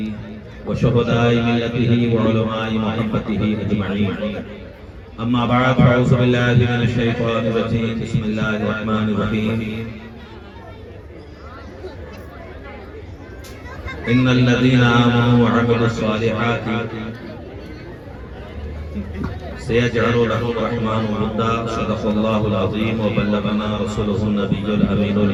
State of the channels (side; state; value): both; identical; correlation 1.00